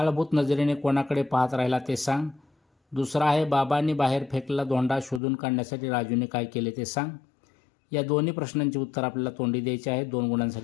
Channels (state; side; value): drops out; right; at 5.2 s